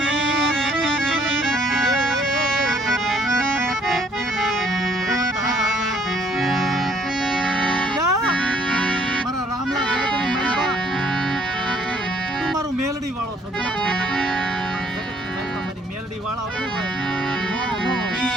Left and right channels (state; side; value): normal; both; correlation 0.63